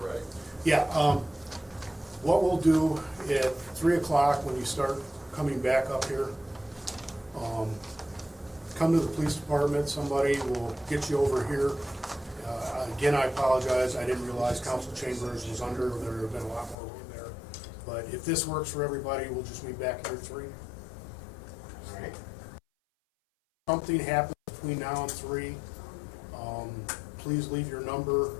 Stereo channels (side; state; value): right; drops out; at 16.8 s